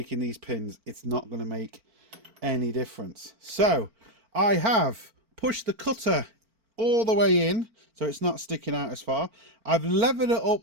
these pins, it's not going to make any difference. So I have pushed the cutter all the way in, so it's not sticking out as far. I've levered it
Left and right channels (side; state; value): left; late; 4.4 ms